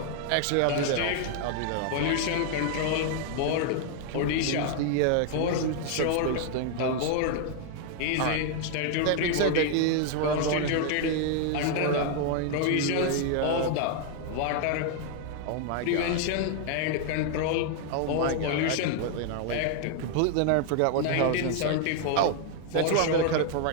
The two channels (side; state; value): both; different; correlation 0.00